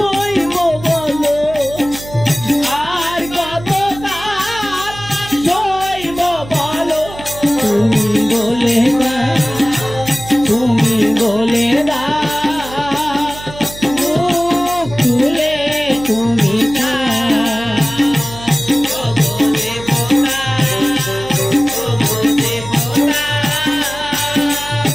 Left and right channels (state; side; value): noise; right; hum, 15 dB below the sound